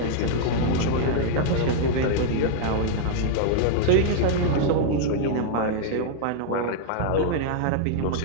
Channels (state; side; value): different; both; correlation -0.01